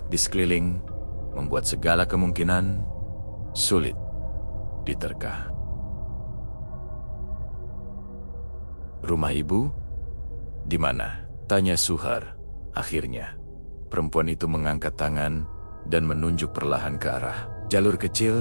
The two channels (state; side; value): inverted; both; correlation -1.00